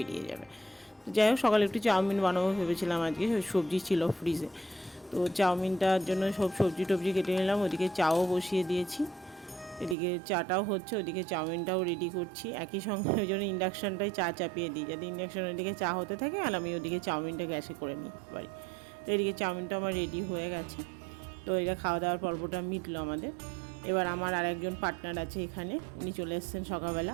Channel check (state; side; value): drops out; left; at 10.0 s